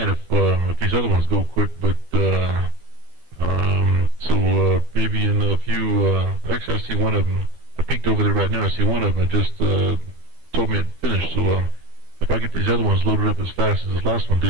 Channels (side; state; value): left; late; 12 ms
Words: if these other ones go quick. But so maybe in a few. Actually, I see one of them. I peeked over there right now. I see one of them. It just told me it finished. So if I get these other ones loaded up as fast as this last one